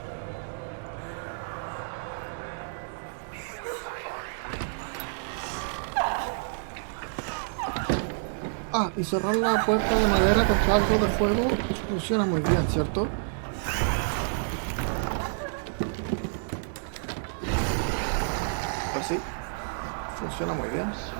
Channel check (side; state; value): left; silent; digital silence